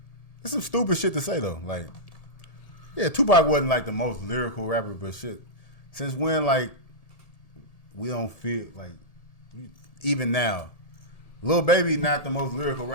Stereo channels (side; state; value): right; late; 1.8 ms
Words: It's some stupid shit to say though. Like, yeah, Tupac wasn't like the most lyrical rapper, but shit. Since when, like, we don't feel like, even now, Lil Baby not the most lyrical